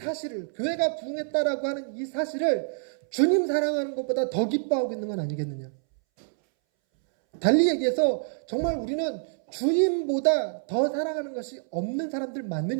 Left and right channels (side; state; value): left; silent; 60 dB below the other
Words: 교회가 부흥했다라고 하는 이 사실을 주님 사랑하는 것보다 더 기뻐하고 있는 건 아니겠느냐. 달리 얘기해서 정말 우리는 주님보다 더 사랑하는 것이 없는 사람들